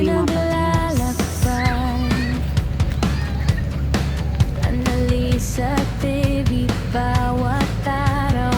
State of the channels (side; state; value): both; identical; correlation 1.00